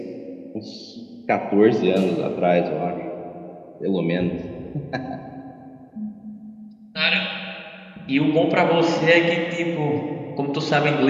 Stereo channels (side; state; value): both; identical; correlation 1.00